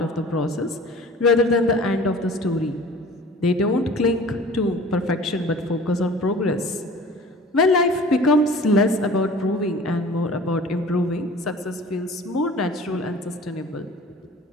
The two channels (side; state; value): both; normal; correlation 0.44